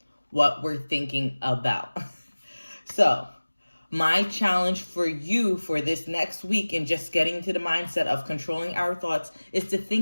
what we're thinking about. So my challenge for you for this next week, and just getting to the mindset of controlling our thoughts, is to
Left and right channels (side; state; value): both; inverted; correlation -1.00